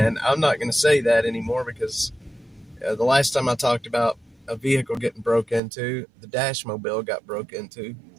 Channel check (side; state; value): left; drops out; at 5.6 s